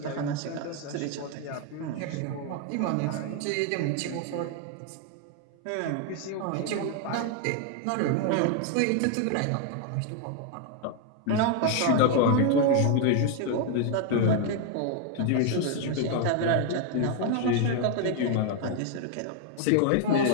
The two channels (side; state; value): both; different; correlation 0.00